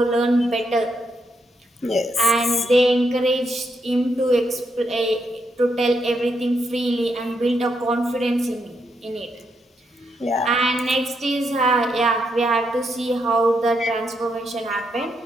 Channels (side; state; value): both; normal; correlation 0.80